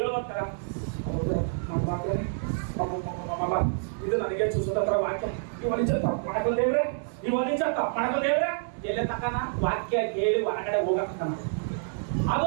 ಇದು ನನಗೆ ಸುಸೂತ್ರ ವಾಕ್ಯ. ನೀವು ಅನಿಚತ್ತ ಮಾಡಕಲ್ ದೇವ್ರೆ, ನೀವು ಅನಿಚತ್ತ ಮಾಡಕಲ್ ದೇವ್ರೆ, ಎಲೆ ತಕನ ವಾಕ್ಯ ಕೇಳಿ ಹೊರಗಡೆ ಹೋಗತಕ್ಕನ,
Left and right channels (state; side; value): silent; left; 59 dB below the other